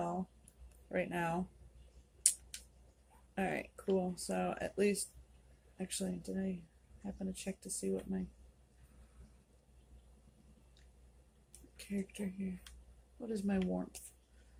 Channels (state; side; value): identical; both; correlation 1.00